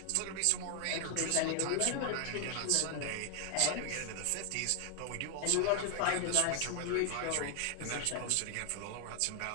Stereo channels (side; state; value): both; different; correlation 0.00